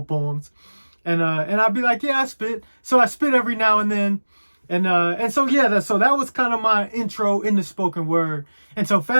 poems, and I'd be like, yeah, I spit. So I spit every now and then, and so yeah, so that was kind of my intro into spoken word. And so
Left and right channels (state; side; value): inverted; both; correlation -1.00